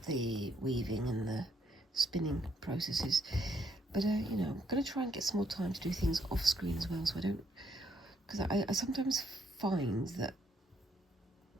weaving and the spinning processes. But you know, I'm going to try and get some more time to do things off screen as well, so I don't, because I sometimes find that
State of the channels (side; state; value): both; normal; correlation 0.72